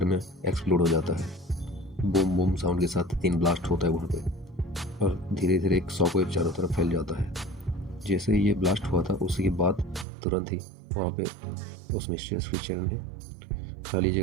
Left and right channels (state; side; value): drops out; left; at 10.1 s